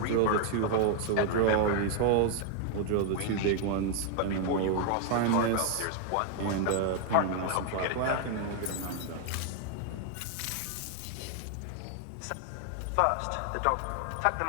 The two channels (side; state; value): both; different; correlation 0.00